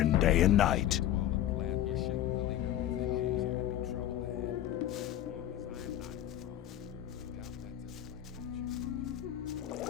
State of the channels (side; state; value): right; quieter; 12.3 dB